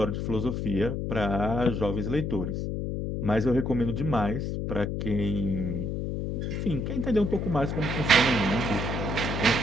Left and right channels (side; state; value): left; noise; hum, 2 dB below the sound